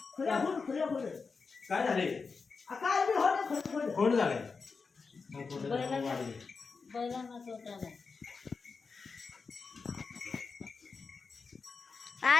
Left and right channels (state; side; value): quieter; right; 4.8 dB